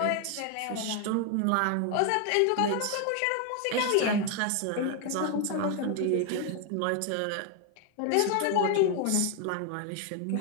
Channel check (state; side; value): different; both; correlation 0.01